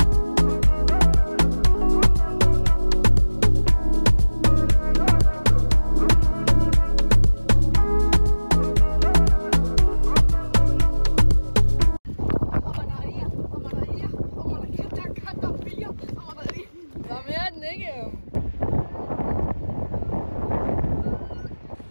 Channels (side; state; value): both; inverted; correlation -1.00